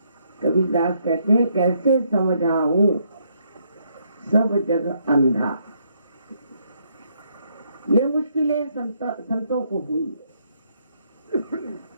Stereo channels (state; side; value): inverted; both; correlation -0.73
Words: कबीरदास कहते हैं, कैसे समझाऊं सब जग अंधा। ये मुश्किलें संतों को हुई,